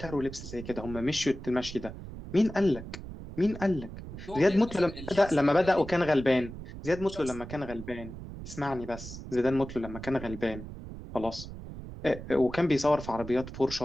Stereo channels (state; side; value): noise; right; rumble, 11 dB below the sound